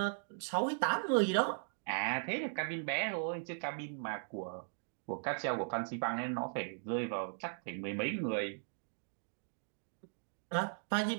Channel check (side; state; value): left; silent; digital silence